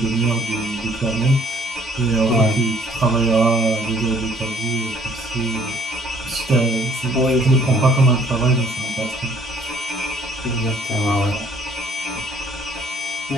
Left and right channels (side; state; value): both; normal; correlation 0.60